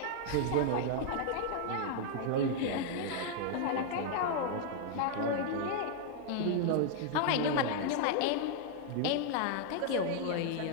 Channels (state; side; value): different; both; correlation 0.00